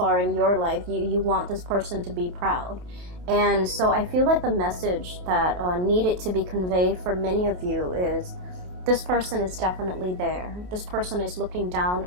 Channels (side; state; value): left; late; 27 ms